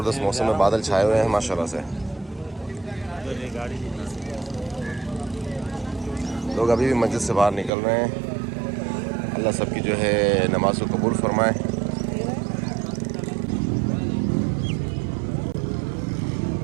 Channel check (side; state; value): left; drops out; at 7.7 s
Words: मौसम है, बादल छाए हुए हैं माशाल्लाह से। लोग अभी भी मस्जिद से बाहर निकल रहे हैं। अल्लाह सबकी जो है नमाज को कबूल फरमाए।